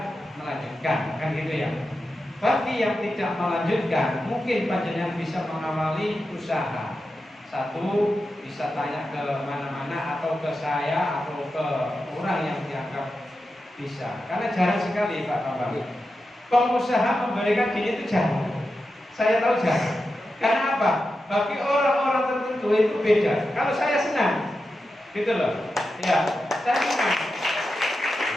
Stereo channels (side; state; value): both; normal; correlation 0.90